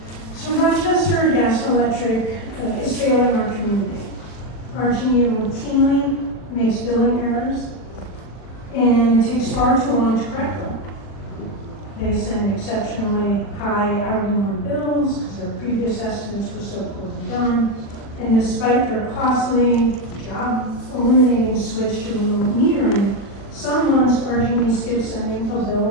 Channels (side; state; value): right; late; 40 ms